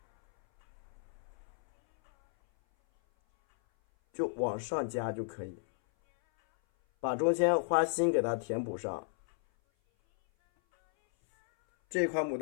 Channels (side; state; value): right; silent; 56 dB below the other